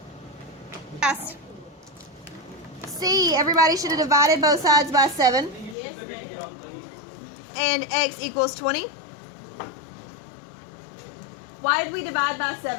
Yes. C, everybody should have divided both sides by 7. And X equals 20. Why did we divide by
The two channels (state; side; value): drops out; right; at 5.8 s